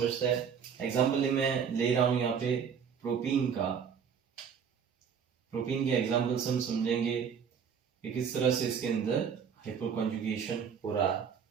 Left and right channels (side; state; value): left; quieter; 7.1 dB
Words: हैं। एग्जाम्पल मैं ले रहा हूं यहाँ पे प्रोपीन का, प्रोपीन के एग्जाम्पल्स हम समझेंगे कि किस तरह से इसके अंदर हाइपर कॉन्जुगेशन हो रहा है।